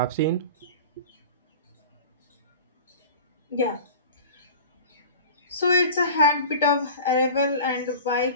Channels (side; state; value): both; inverted; correlation -0.37